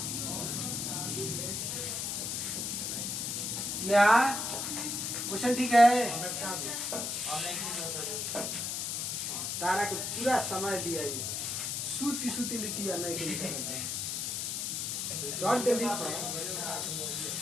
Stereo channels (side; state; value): left; noise; hiss, 2 dB below the sound